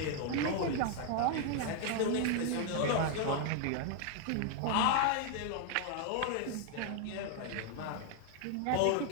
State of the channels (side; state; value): both; different; correlation 0.00